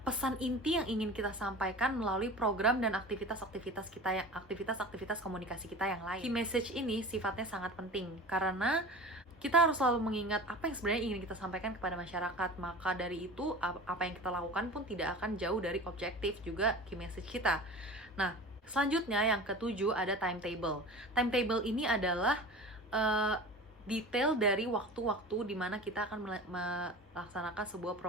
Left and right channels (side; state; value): both; normal; correlation 0.36